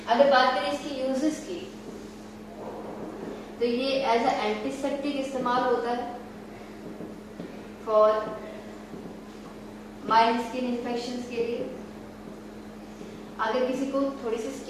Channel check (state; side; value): identical; both; correlation 1.00